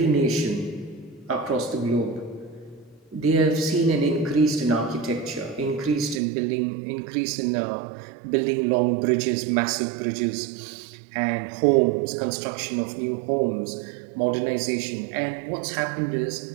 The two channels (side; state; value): left; drops out; at 6.2 s